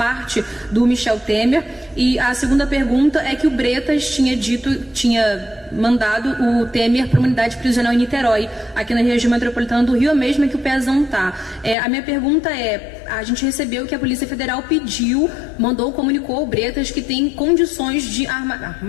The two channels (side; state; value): right; drops out; at 11.8 s